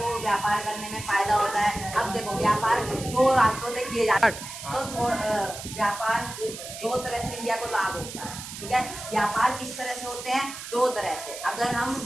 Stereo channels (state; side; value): noise; right; hiss, 10 dB below the sound